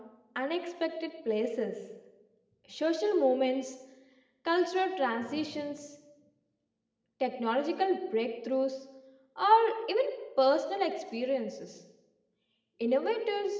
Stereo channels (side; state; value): both; identical; correlation 1.00